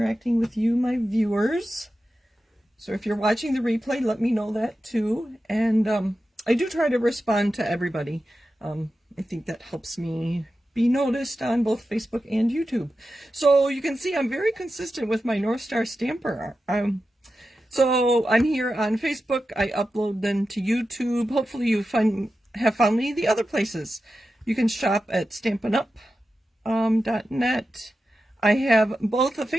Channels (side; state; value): both; normal; correlation 0.92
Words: with you, my viewers. So if you're watching the replay, let me know that too. And I do try to respond to everybody. I think that helps me be noticed on both Facebook and YouTube. So you can see I'm very consistent with my North Star Stamper. So I'm here on Facebook. I upload them to YouTube. Hopefully you have found me the other places. You can shop at stampinup.net. I have both a